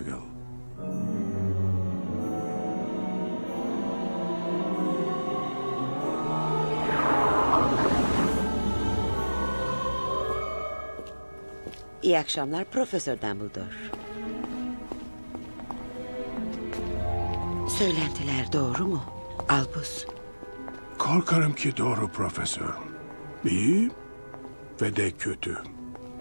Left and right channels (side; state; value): both; inverted; correlation -1.00